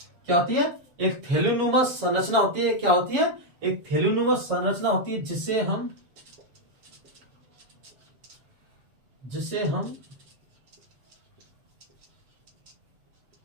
क्या होती है? एक थैलीनुमा संरचना होती है। क्या होती है? एक थैलीनुमा संरचना होती है जिसे हम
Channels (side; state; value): left; late; 7.3 ms